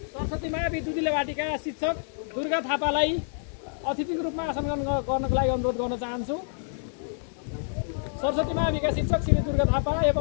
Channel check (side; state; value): right; silent; digital silence